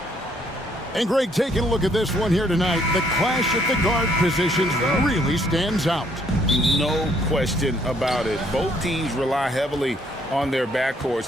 And Greg, taking a look at this one here tonight, the clash at the guard positions really stands out. No question about it. Both teams rely heavily on their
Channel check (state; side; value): normal; both; correlation 0.66